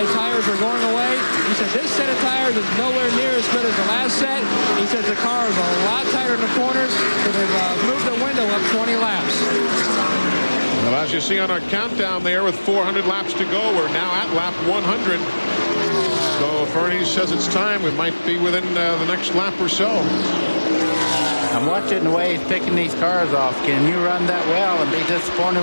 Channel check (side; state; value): both; inverted; correlation -1.00